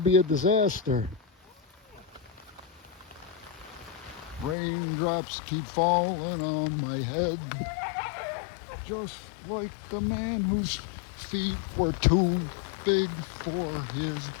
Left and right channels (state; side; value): drops out; right; at 4.5 s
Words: be a disaster. Raindrops keep falling on my head, just like the man whose feet were too big for his